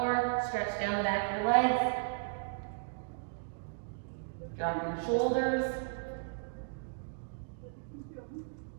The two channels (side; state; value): left; silent; digital silence